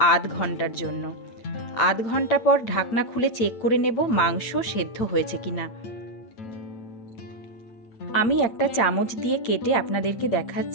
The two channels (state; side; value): late; right; 9.0 ms